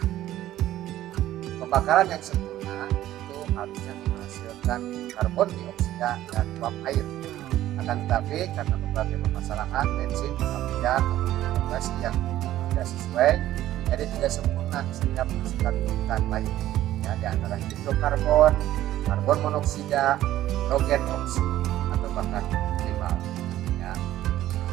pembakaran yang sempurna itu harusnya menghasilkan karbon dioksida dan uap air. Akan tetapi karena berbagai permasalahan bensin, kemudian regulasi yang tidak sesuai, jadi tidak sempurna sehingga menghasilkan polutan lain. Ya, di antara hidrokarbon, karbon monoksida, hidrogen oksida, atau bahkan timbal. Ya,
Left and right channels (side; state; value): left; quieter; 13.7 dB